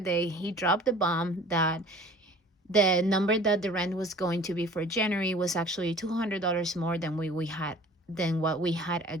he dropped the bomb that the number that the rent was going to be for January was actually $200 more than what we had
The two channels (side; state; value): both; normal; correlation 0.47